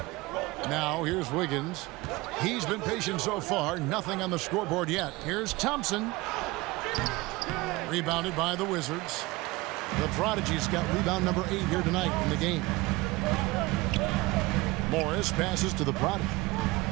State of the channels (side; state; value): left; quieter; 21.8 dB